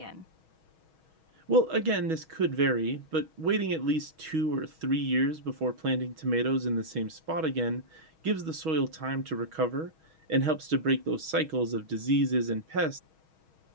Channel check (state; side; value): late; left; 6.3 ms